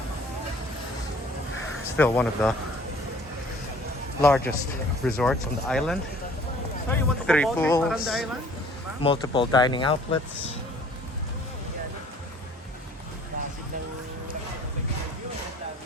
Still one of the largest resorts on the island. 3 pools, multiple dining outlets.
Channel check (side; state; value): both; normal; correlation 0.53